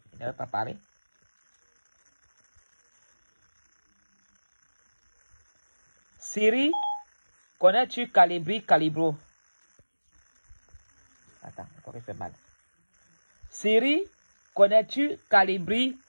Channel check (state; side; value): inverted; both; correlation -1.00